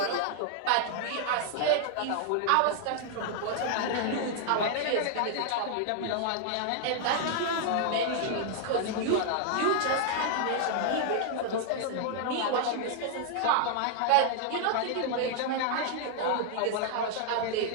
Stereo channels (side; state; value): both; different; correlation 0.00